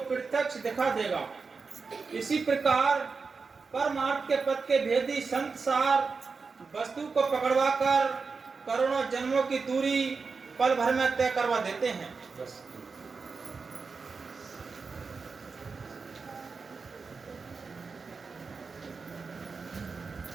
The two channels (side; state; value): left; quieter; 4.7 dB